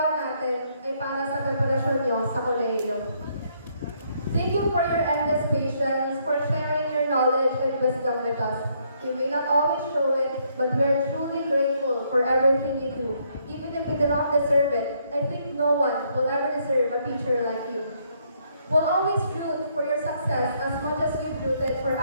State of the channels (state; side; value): inverted; both; correlation -0.71